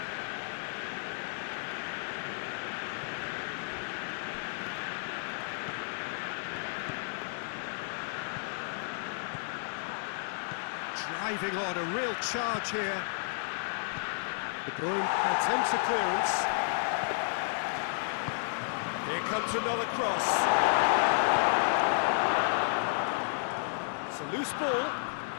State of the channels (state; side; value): silent; right; digital silence